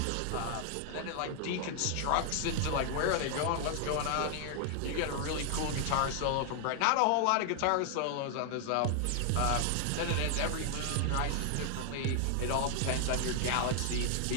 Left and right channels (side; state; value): both; different; correlation 0.00